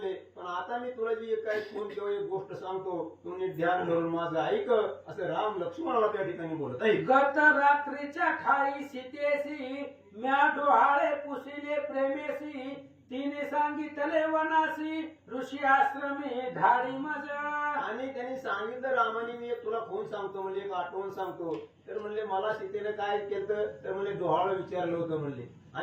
पण आता मी तुला जी एक काही खून किंवा एक गोष्ट सांगतो तू नीट ध्यान धरून माझं ऐक, असं राम लक्ष्मणाला त्या ठिकाणी बोलत आहे. गत रात्रीच्या ठाई सीतेसी म्या डोहाळे पुसिले प्रेमेसी तिने सांगितले वनासी ऋषी आश्रमे धाडी मज. आणि त्यांनी सांगितलं रामाने मी एक तुला खून सांगतो म्हणजे एक आठवण सांगतो, तर म्हणले मला सीतेने काय केलं तर म्हणले डोहाळं विचारलं होतं म्हणले,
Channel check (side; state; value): both; identical; correlation 1.00